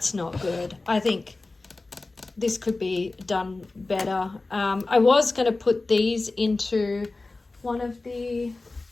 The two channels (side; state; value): right; quieter; 3.3 dB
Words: not good. I think this could be done better. I was going to put these into one of the